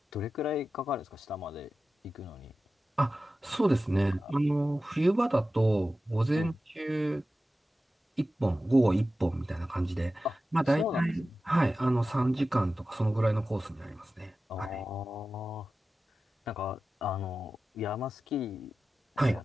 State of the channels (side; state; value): both; normal; correlation 0.94